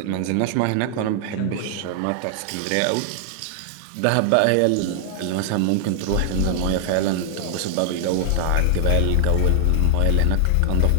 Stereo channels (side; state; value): both; different; correlation 0.00